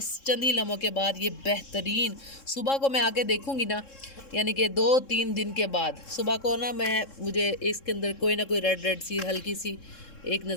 चंद ही लम्हों के बाद ये बेहतरीन। सुबह को मैं आके देखूँगी ना, यानी कि 2-3 दिन के बाद सुबह को ना, मुझे इसके अंदर कोई ना कोई रेड सी हल्की सी एक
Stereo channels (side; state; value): right; late; 3.7 ms